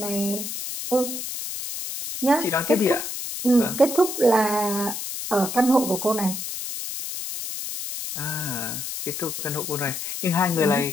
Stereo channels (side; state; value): left; noise; hiss, 6 dB below the sound